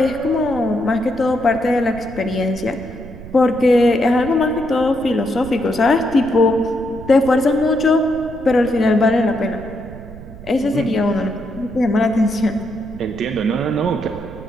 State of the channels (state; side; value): noise; right; rumble, 15 dB below the sound